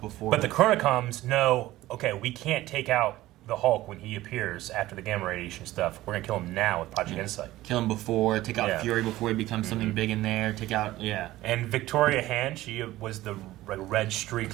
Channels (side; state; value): left; quieter; 16.3 dB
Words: before. But the Chronocoms know, okay, we can't take out the Hulk when he appears after the gamma radiation stuff. We're gonna kill him now with Project Insight. Kill him before, take out Fury before he becomes something big in there. Take out, And Victoria Hand, she was the red